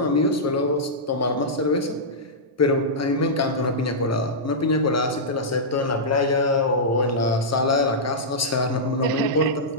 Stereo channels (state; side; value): normal; both; correlation -0.12